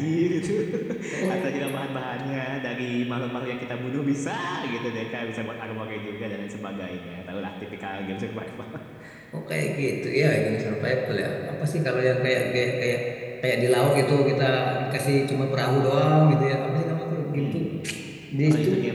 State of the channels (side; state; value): both; identical; correlation 1.00